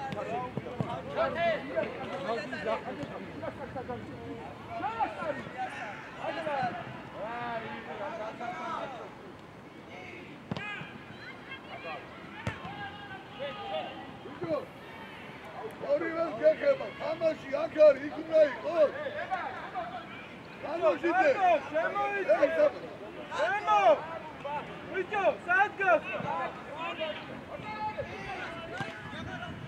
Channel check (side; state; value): both; identical; correlation 1.00